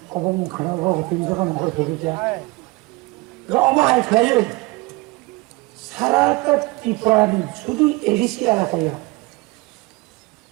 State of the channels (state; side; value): quieter; left; 24.6 dB